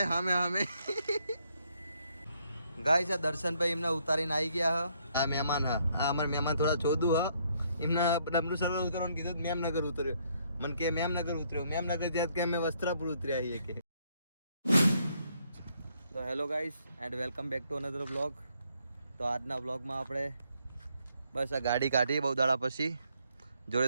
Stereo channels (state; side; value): inverted; both; correlation -0.71